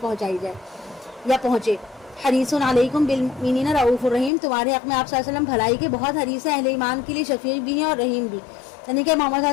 جائے یا پہنچے. حریص علیکم بالمؤمنین رؤوف الرحیم، تمہارے حق میں آپ صلی اللہ علیہ وسلم بھلائی کے بہت حریص ہیں، اہل ایمان کے لیے شفیع بھی ہیں اور رحیم بھی. یعنی کہ محمد صلی اللہ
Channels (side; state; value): right; drops out; at 4.3 s